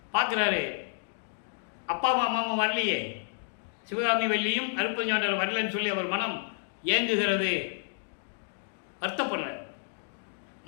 பார்க்குறாரு, அப்பா அம்மாவும் வரலையே, சிவகாமி வெள்ளியும் அருப்பஞ்சாண்டர் வரலன்னு சொல்லி அவர் மனம் ஏங்குகிறது, வருத்தப்படுறார்.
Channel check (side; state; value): right; silent; digital silence